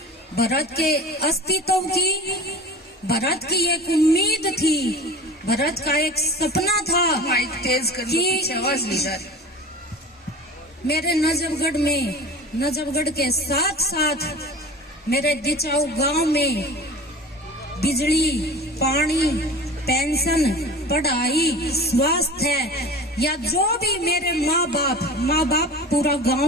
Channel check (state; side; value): normal; both; correlation 0.36